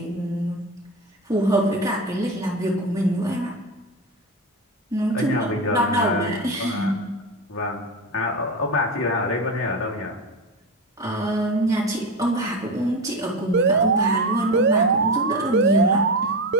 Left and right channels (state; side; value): normal; both; correlation 0.20